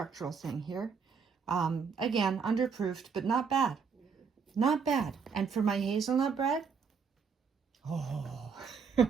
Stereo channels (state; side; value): quieter; left; 5.8 dB